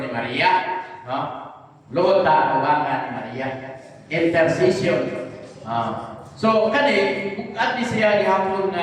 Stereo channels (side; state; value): both; identical; correlation 1.00